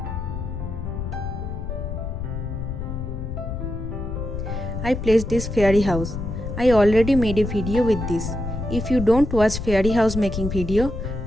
I placed this fairy house. I already made a video with this. If you don't watch fairy house making video,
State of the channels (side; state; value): left; noise; rumble, 5 dB below the sound